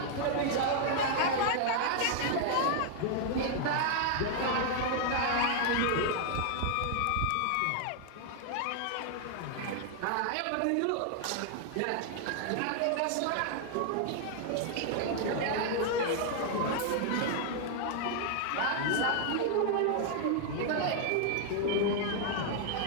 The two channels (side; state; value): both; different; correlation 0.00